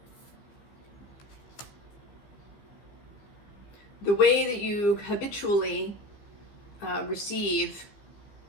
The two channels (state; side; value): late; right; 15 ms